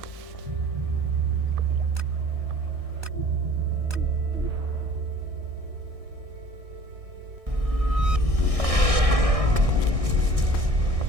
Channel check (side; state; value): left; late; 1.6 ms